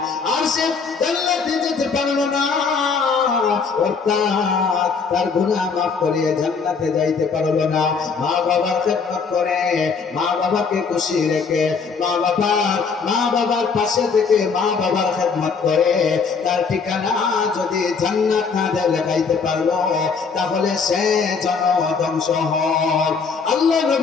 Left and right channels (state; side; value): quieter; right; 5.3 dB